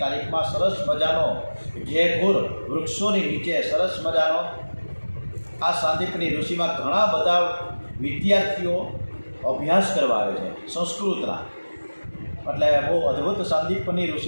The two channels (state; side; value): inverted; both; correlation -1.00